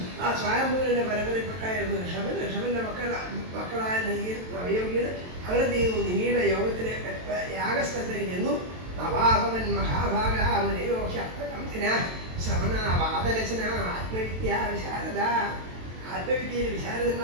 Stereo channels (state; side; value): late; left; 22 ms